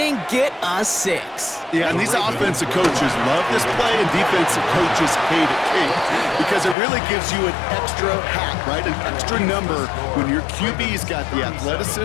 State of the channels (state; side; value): drops out; right; at 6.8 s